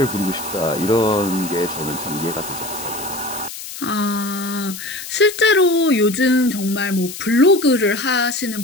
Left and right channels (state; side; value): noise; left; hiss, 11 dB below the sound